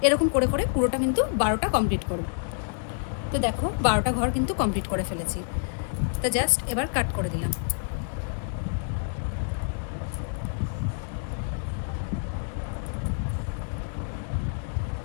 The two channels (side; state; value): right; silent; digital silence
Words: এরকম করে করে পুরোটা কিন্তু 12টা কমপ্লিট করব। তো দেখো, 12টা ঘর কিন্তু কমপ্লিট করে ফেলেছি। তো জাস্ট এবার কাট করে দিলাম।